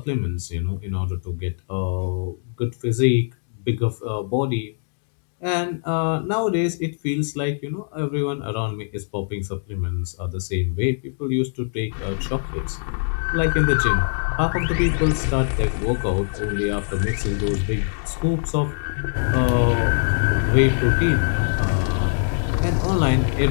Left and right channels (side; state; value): right; silent; digital silence